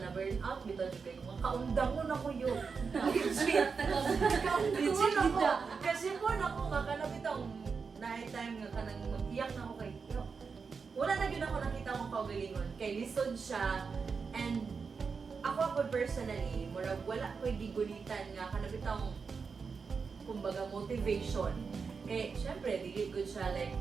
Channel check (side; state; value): left; quieter; 5.3 dB